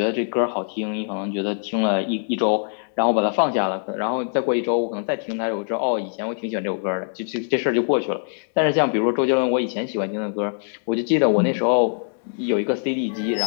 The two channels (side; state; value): right; silent; digital silence